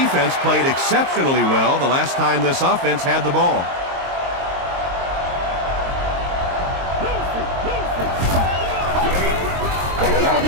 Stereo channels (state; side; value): late; left; 22 ms